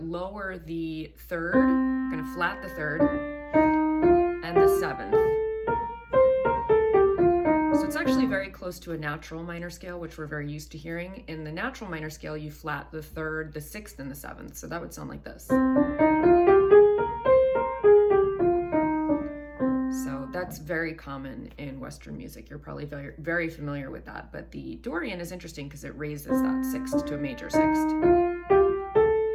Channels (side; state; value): both; identical; correlation 1.00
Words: the third, you're gonna flat the third, and the seventh. So it's actually very close to a natural minor scale, which we're very used to hearing. In the natural minor scale, you flat the third, the sixth, and the seventh. So that would sound like this. So that's that's very common in Western music. You're probably very, very familiar with that. But the Dorian is interesting because it raises that sixth to a major sixth,